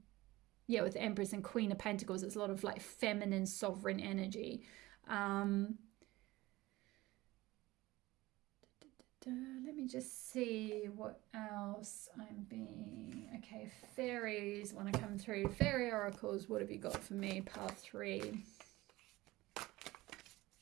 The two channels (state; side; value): quieter; left; 19.0 dB